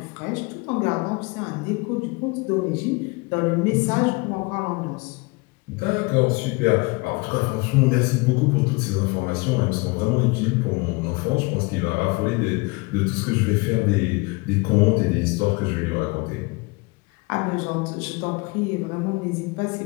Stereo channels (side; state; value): right; quieter; 26.8 dB